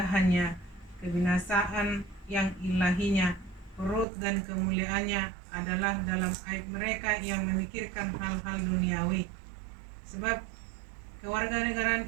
kebinasaan yang ilahinya, perut dan kemuliaannya adalah dalam aib mereka yang memikirkan hal-hal duniawi. Sebab kewargaan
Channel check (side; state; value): left; drops out; at 4.0 s